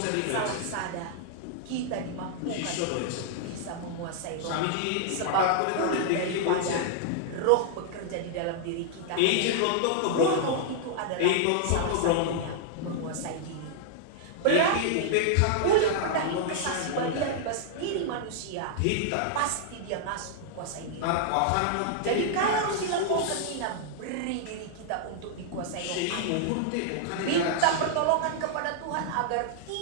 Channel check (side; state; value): both; different; correlation -0.01